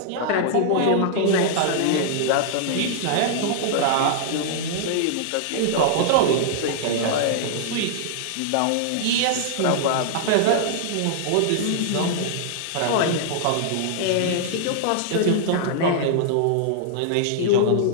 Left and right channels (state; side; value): different; both; correlation -0.01